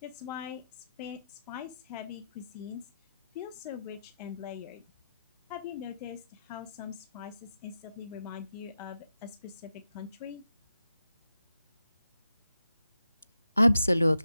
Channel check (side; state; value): both; inverted; correlation -0.88